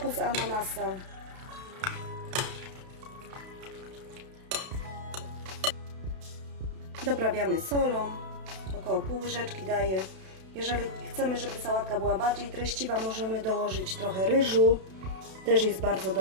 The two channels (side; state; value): left; late; 32 ms